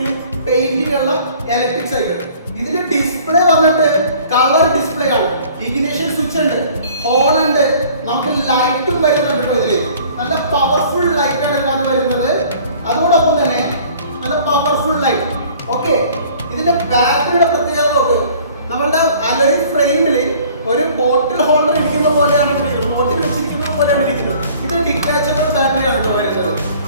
പെയിന്റിംഗ് ഉള്ള ഇലക്ട്രിക് സൈക്കിൾ. ഇതിന്റെ ഡിസ്പ്ലേ വന്നിട്ട് കളർ ഡിസ്പ്ലേ ആണ്. ഇഗ്നിഷൻ സ്വിച്ച് ഉണ്ട്, ഹോൺ ഉണ്ട്, നമുക്ക് ലൈറ്റും വരുന്നുണ്ട്. ഇതില് നല്ല പവർഫുൾ ലൈറ്റ് ആണ് ഇതിനകത്ത് വരുന്നത്. അതോടൊപ്പം തന്നെ നല്ല പവർഫുൾ ലൈറ്റ്. ഓക്കെ, ഇതിന്റെ ബാറ്ററിയുടെ പ്രത്യേകത നോക്ക്. നമ്മളുടെ അലോയ് ഫ്രെയിമിൽ ഒരു ബോട്ടിൽ ഹോൾഡർ ഇരിക്കുന്ന പോലെയാണ് ഇരിക്കുന്നത്, ബോട്ടിൽ വെച്ചിരിക്കുന്നത് പോലെയാണ് ഇരിക്കുന്നത്. ഇത് ഡിറ്റാച്ചബിൾ ബാറ്ററിയാണ് കേട്ടോ വരുന്നത്.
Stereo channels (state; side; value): inverted; both; correlation -0.52